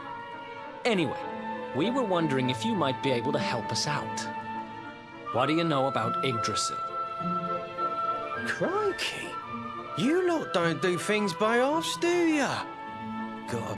Anyway, we were wondering if you might be able to help us out. What do you know about Yggdrasil? Crikey, you lot don't do things by halves, do ya?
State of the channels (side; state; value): both; identical; correlation 1.00